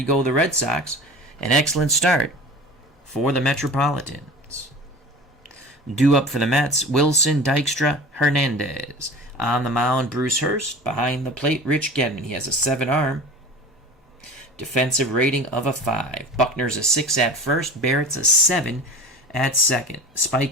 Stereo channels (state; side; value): normal; both; correlation 0.37